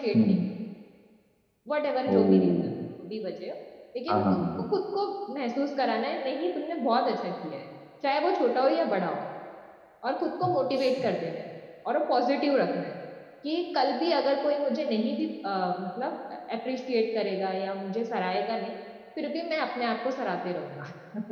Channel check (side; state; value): both; identical; correlation 1.00